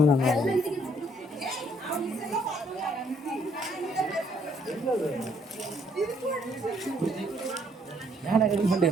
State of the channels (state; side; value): normal; both; correlation 0.67